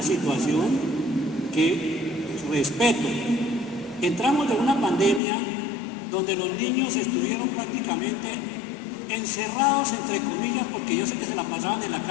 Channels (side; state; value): right; drops out; at 5.2 s